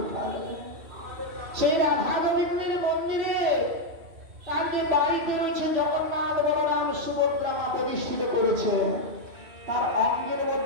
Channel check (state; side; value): late; left; 2.6 ms